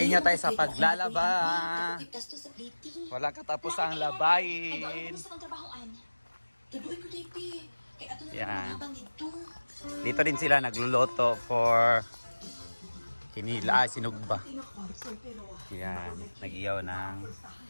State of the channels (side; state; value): both; inverted; correlation -1.00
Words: tayo sa paglalaba. Wala katapos ang labayin. Yan. Dito din sila nagluluto for kinila, sinugba. Yan, nag-iyaw ng